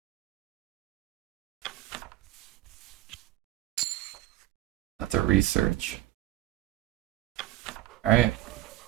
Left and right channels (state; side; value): quieter; left; 15.3 dB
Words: That's a research. Alright.